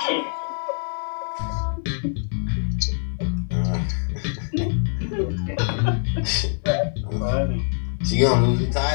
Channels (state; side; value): silent; right; 63 dB below the other